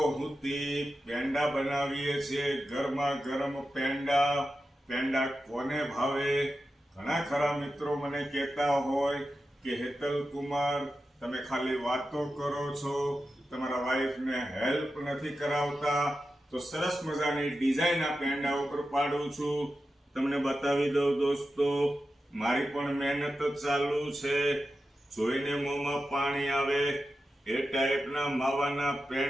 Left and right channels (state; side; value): normal; both; correlation 0.91